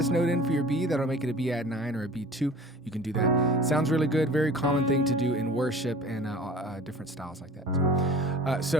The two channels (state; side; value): normal; both; correlation 0.44